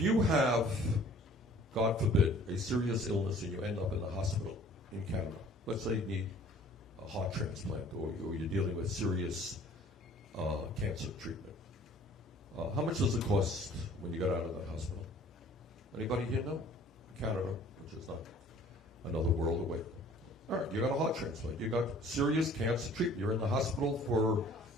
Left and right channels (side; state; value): both; normal; correlation 0.52